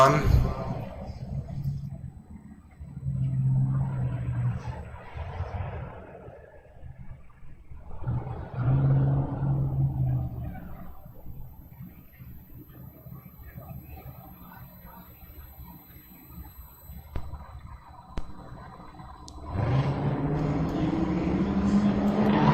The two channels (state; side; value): identical; both; correlation 1.00